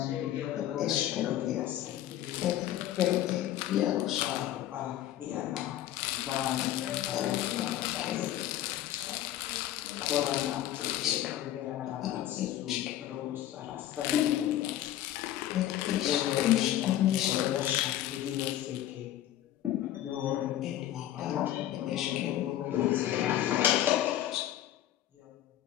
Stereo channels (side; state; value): right; quieter; 12.8 dB